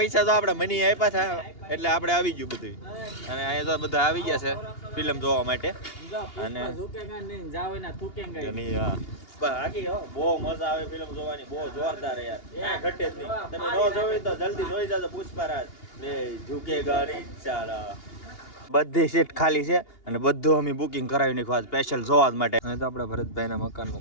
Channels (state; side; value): late; right; 2.8 ms